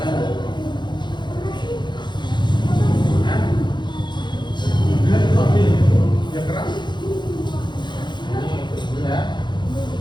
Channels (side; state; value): right; late; 0.22 ms